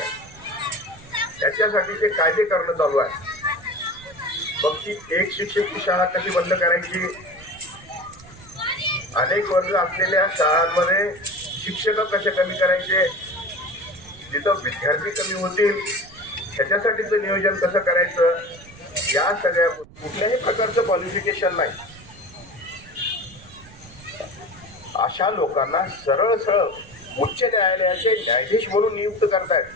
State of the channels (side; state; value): right; noise; rumble, 21 dB below the sound